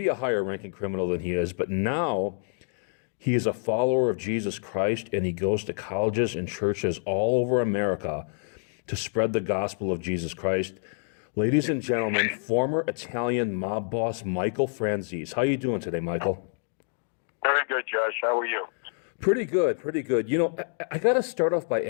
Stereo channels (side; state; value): right; silent; digital silence